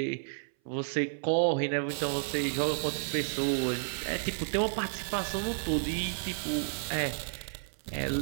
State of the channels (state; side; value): silent; left; 57 dB below the other